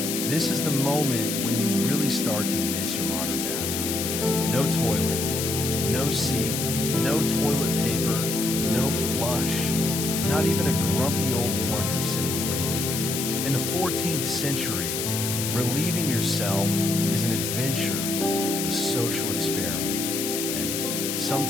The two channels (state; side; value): noise; left; hiss, 2 dB below the sound